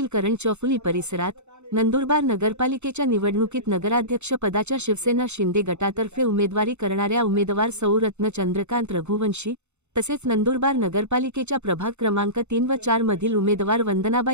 करण चौफुली परिसरात नंदुरबार नगरपालिकेच्या निवडणुकीत नगराध्यक्ष पदाच्या शिवसेना शिंदे गटातर्फे उमेदवारी करणाऱ्या उमेदवार सौ रत्न चंद्रकांत रघुवंशी तसेच नंदुरबार नगरपालिकेच्या प्रभाग क्रमांक 3 व 4 मधील उमेदवार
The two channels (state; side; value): late; left; 0.82 ms